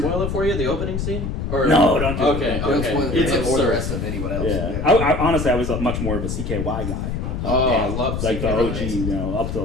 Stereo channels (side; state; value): left; noise; rumble, 3 dB below the sound